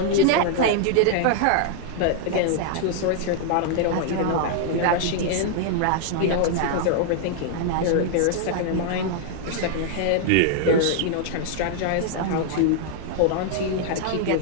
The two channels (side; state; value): both; different; correlation -0.01